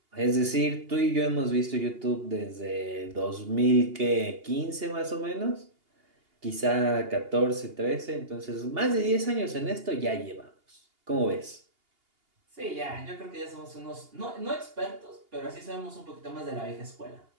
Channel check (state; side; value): late; left; 2.8 ms